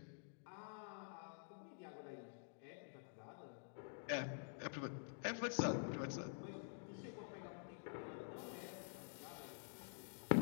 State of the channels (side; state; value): right; silent; digital silence